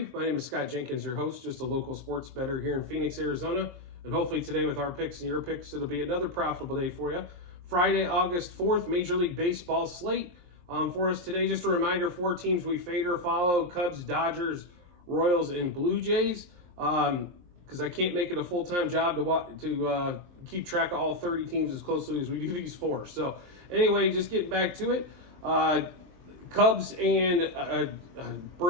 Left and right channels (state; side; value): late; left; 23 ms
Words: My name is Scott Jenkins, your host, just a local sports bettor here in Phoenix, Arizona. And hopefully today with our picks and your picks, it'll be another profitable day for you. Friday, August 4th, Major League Baseball slate for us today. Just a reminder, 4 teams we fade or follow: Cubs, Dodgers, Royals, and Blue Jays. Because I can't make it a full-time job to keep track of all 30 teams as closely as we do these 4. So anyway, just getting back to it. Cubs and